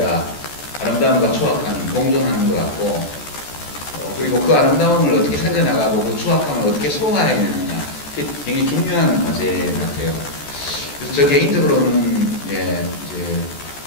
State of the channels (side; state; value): right; late; 14 ms